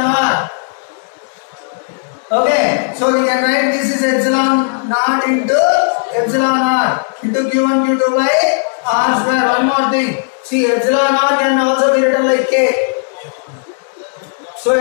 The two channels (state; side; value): silent; right; digital silence